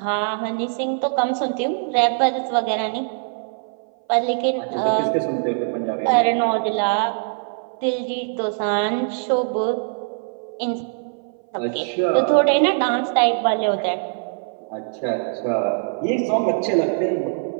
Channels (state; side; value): silent; left; 58 dB below the other